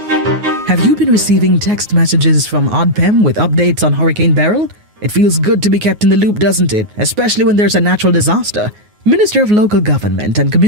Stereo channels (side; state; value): left; late; 9.5 ms